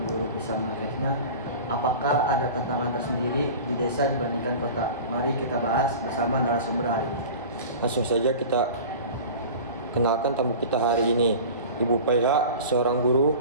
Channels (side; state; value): both; inverted; correlation -0.37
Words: guru bisa mengaksesnya? Apakah ada tantangan tersendiri di desa dibandingkan kota? Mari kita bahas bersama narasumber hari ini. Langsung saja kita kenalkan tamu kita hari ini, Ibu PH, seorang guru